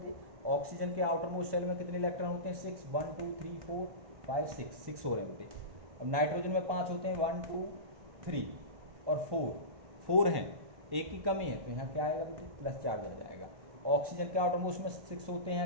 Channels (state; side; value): late; left; 1.1 ms